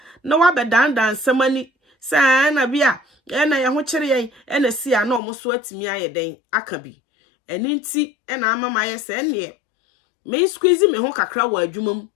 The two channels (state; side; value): drops out; right; at 5.2 s